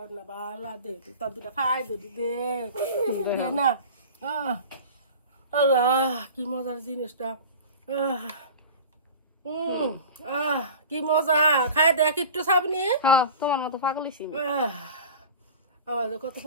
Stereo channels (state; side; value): inverted; both; correlation -0.38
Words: বালা দে তোর দুটা খাই দে দে দে না আল্লাহ কি মজার জিনিসটা কি মজা খাই দেখ একটু সাবনি হ্যাঁ তোমার মতো পাগল হইছি আমার যে কত